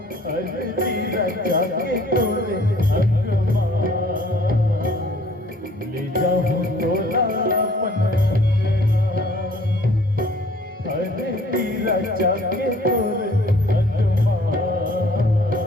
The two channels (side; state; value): both; normal; correlation 0.55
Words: हल्दी रचा के तोरे अंगमा, ले जाऊँ तोला अपन हल्दी रचा के तोरे अंगमा,